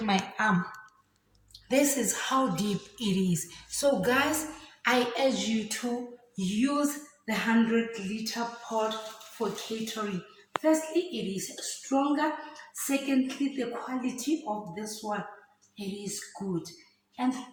my arm. This is how deep it is. So, guys, I urge you to use the 100-liter pot for catering. Firstly, it is stronger. Secondly, the quality of this one, it is good. And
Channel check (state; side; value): identical; both; correlation 1.00